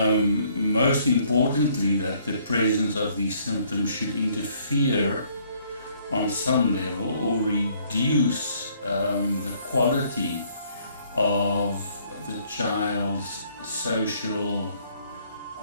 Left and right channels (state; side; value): inverted; both; correlation -0.64